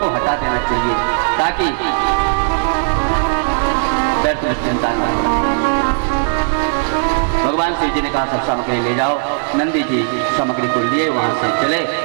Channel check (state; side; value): silent; left; 68 dB below the other